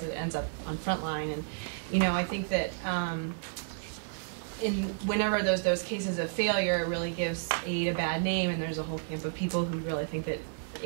it ends up on frontline, and you know, I think that whenever those cases of failure, it really gives aid a bad name, and there's a whole camp of people who really think that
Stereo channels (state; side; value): silent; left; digital silence